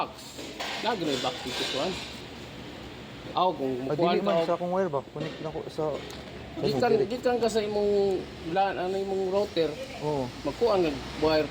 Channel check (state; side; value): identical; both; correlation 1.00